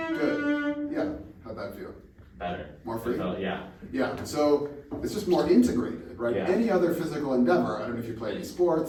So it's just more integrated, right? Yeah. Any other physical endeavor, I don't know if you play any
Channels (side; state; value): both; identical; correlation 1.00